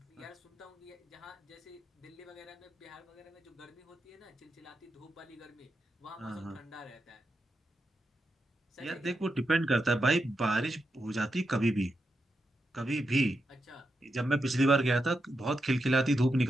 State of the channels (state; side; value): normal; both; correlation 0.86